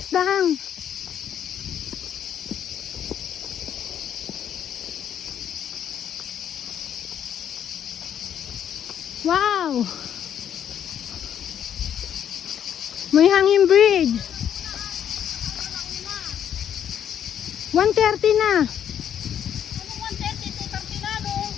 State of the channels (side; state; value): right; quieter; 9.3 dB